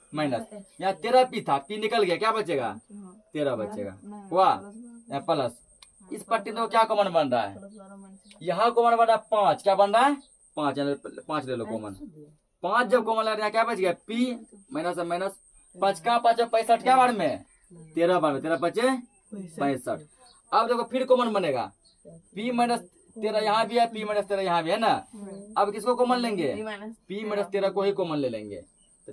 माइनस। यहाँ 13p था, p निकल गया, क्या बचेगा? 13 बचेगा। हुआ यहाँ प्लस। इस पट्टी में क्या कॉमन बन रहा है? यहाँ कॉमन बन रहा है 5। क्या बन रहा है? 5 ले लो कॉमन। 5 जब कॉमन लग रहा है क्या बच गया? p माइनस माइनस 5 का 5 65 क्या बार में? 13 बार में। 13 पचे 65। अब देखो फिर कॉमन बनेगा, p माइनस 13 यहाँ भी है, p माइनस 13 यहाँ भी है ना। अब किसको कॉमन लेंगे? p माइनस 13 को ही कॉमन ले लेंगे।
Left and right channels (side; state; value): both; identical; correlation 1.00